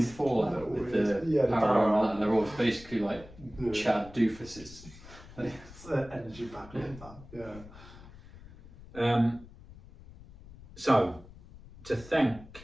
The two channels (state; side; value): noise; left; rumble, 19 dB below the sound